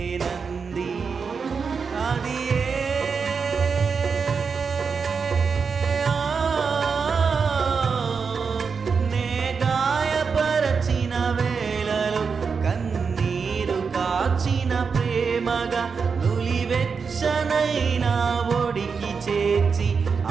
అది ప్రేమగా నులివెచ్చనైనా ఒడికి చేర్చి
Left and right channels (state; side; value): quieter; left; 5.5 dB